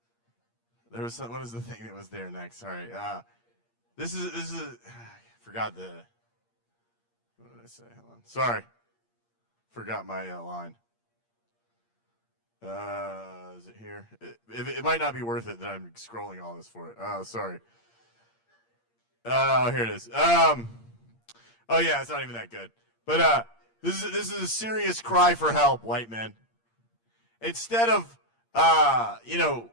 There was some, what is the thing that was there next? Sorry. This is I forgot the, what did I say? Hold on. Sorry. Forgot my line. Is it here? It might not be worth it that I'm scrolling all this for it. Oh, sorry. Oh, here it is. Oh yeah, it's not even that good. But this is a serious cry for help, white men. Instead of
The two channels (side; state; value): right; late; 8.7 ms